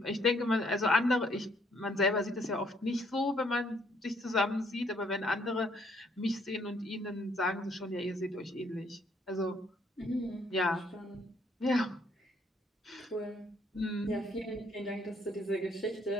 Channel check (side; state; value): both; normal; correlation 0.67